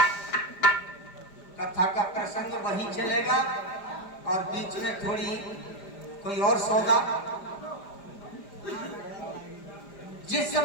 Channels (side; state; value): right; late; 4.9 ms